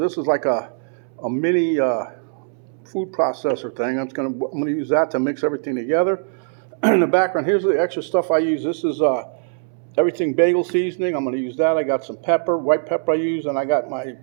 is like a mini food processor thing. I'm gonna use that to mix everything together. In the background, here's the extra stuff I use. This is Everything Bagel seasoning. I'm going to use that. I got some pepper, white pepper I use, and I got my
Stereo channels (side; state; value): left; silent; 65 dB below the other